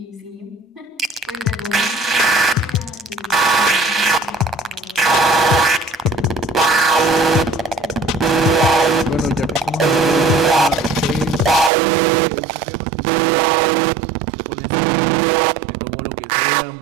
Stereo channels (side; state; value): left; drops out; at 11.7 s